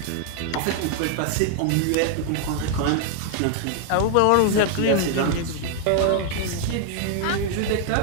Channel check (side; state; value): both; different; correlation 0.00